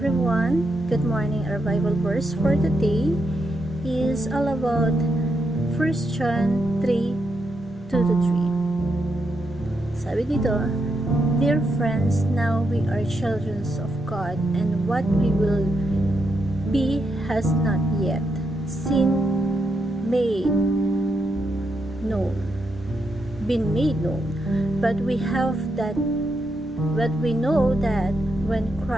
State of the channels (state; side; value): normal; both; correlation 0.82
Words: good morning. Our Bible verse for today is all about 1 John 3, 2-3. Sabi dito, "Dear friends, now we are children of God, and what we will be has not yet been made known. But we know that when